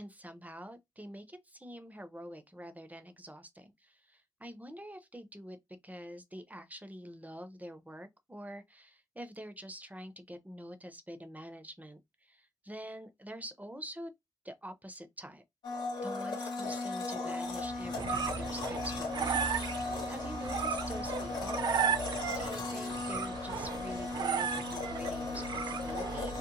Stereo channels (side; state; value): both; normal; correlation 0.41